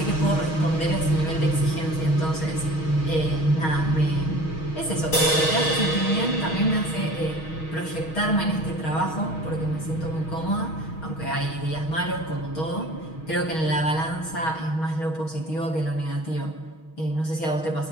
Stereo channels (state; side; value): late; right; 6.3 ms